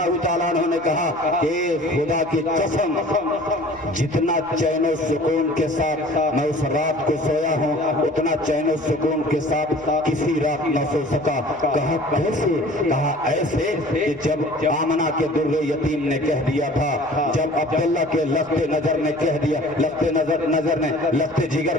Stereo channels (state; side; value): noise; left; rumble, 28 dB below the sound